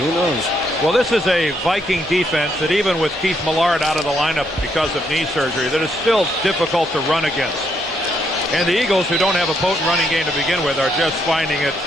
knows? Well, this is a Viking defense that even with Keith Millard out of the lineup because of knee surgery, that is still difficult to run against. And the Eagles, who don't have a potent running game to begin with, are just finding it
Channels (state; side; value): normal; both; correlation 0.75